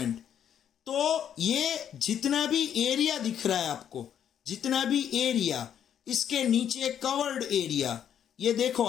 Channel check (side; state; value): right; quieter; 9.2 dB